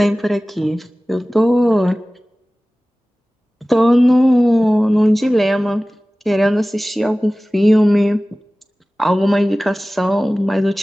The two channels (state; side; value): normal; both; correlation 0.97